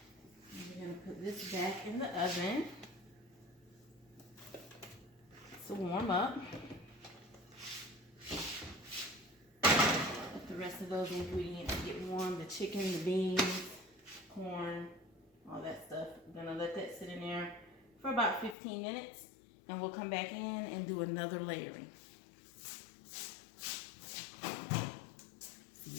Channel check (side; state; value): right; drops out; at 18.6 s